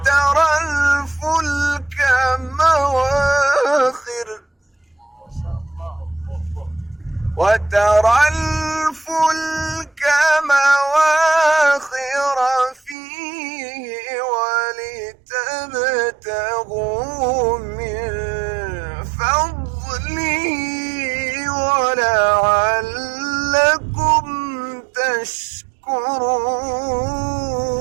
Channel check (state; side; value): drops out; left; at 13.0 s